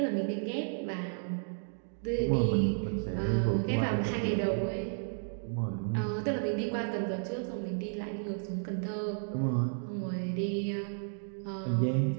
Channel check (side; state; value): left; silent; digital silence